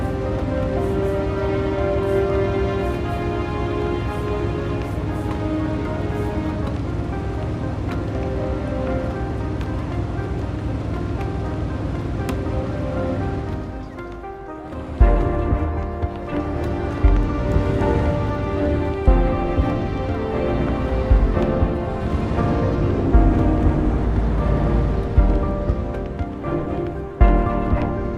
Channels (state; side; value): identical; both; correlation 1.00